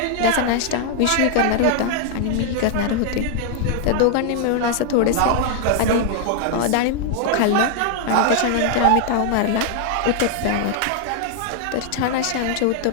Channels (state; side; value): different; both; correlation 0.00